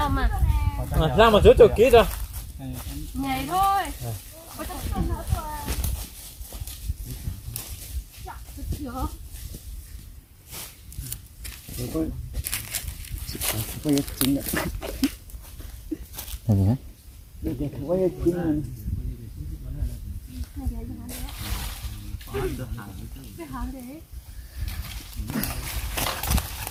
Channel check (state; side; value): identical; both; correlation 1.00